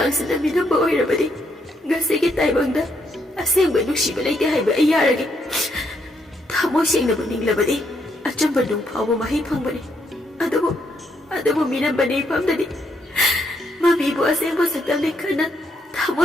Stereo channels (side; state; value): both; normal; correlation 0.75